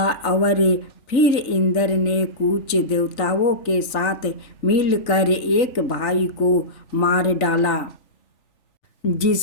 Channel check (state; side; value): late; right; 3.4 ms